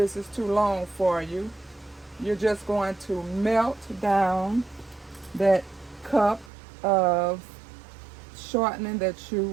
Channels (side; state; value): left; drops out; at 6.5 s